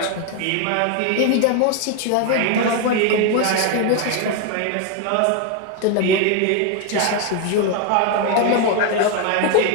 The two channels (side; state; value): both; different; correlation 0.01